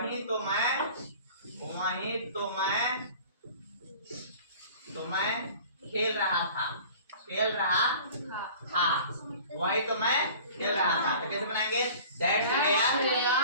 तो मैं, वही तो मैं खेल रहा था, खेल रहा था, वही तो मैं खेल रहा था। तो कैसे बनाएंगे? That's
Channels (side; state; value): both; inverted; correlation -0.45